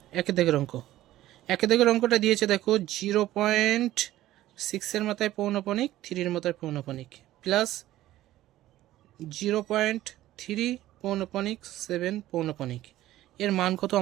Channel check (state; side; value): quieter; left; 14.7 dB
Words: একের দাগের অঙ্ক, একের দাগের অঙ্কটা দিয়েছে দেখো 0.6 মাথায় পৌনপণিক, 3 মাথায় পৌনপণিক প্লাস 0.3 পৌনপণিক 7 পৌনপণিক, এর মান কত